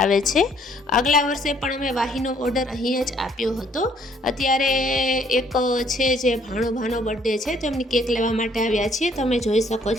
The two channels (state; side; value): normal; both; correlation 0.63